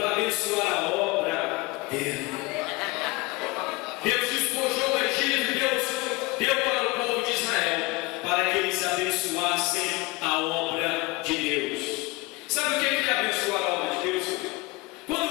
abençoar a obra dele. Deus despojou o Egito e Deus deu para o povo de Israel para que eles abençoassem a obra de Deus. Sabe o que é abençoar a obra de Deus?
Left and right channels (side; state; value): right; quieter; 23.8 dB